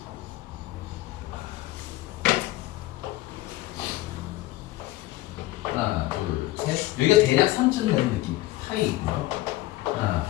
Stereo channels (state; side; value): quieter; right; 17.4 dB